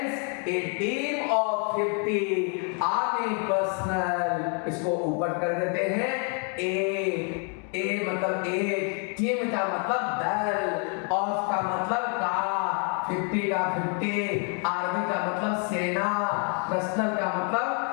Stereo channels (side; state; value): right; quieter; 39.2 dB